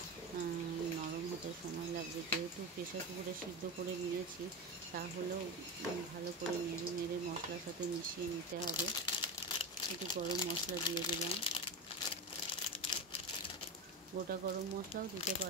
নরম হতে সময় লাগবে। যেহেতু প্রেসার কুকারে সিদ্ধ করে নিয়েছি, তাহলেও ভালো করে নেড়ে নেড়ে মশলার সাথে মিশিয়ে নিতে হবে। একটু গরম মশলা দিয়ে দিলাম, গোটা গরম মশলাও দিতে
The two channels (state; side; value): normal; both; correlation 0.19